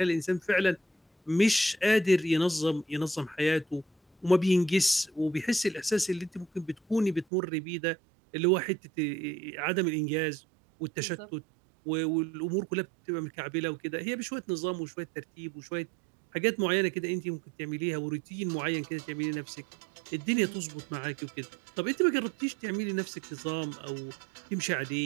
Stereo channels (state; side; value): drops out; left; at 7.2 s